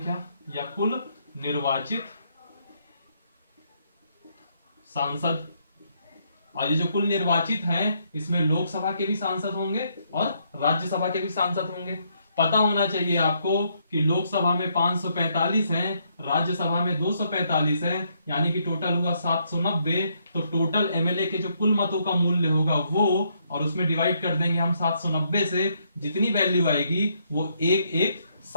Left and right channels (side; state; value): both; inverted; correlation -0.73